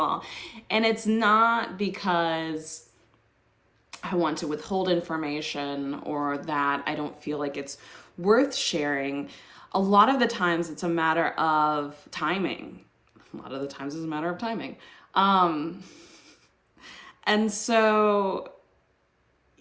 And it's not because I want to withhold information or that I don't feel like it's worth sharing. A lot of the times it's a matter of timing. A lot of the times it's a matter of timing. Um, and so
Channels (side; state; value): both; identical; correlation 1.00